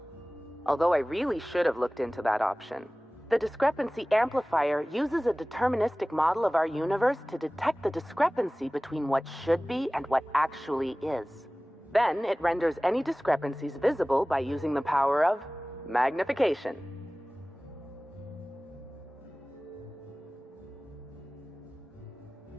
Although I really should have looked into that option. The discrepancy amplifier uses a deterministic model of our universe to detect the discrepancy between what should be and what actually is. Then it renders any discrepancies visible by using the power of magnification.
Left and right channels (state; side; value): normal; both; correlation 0.98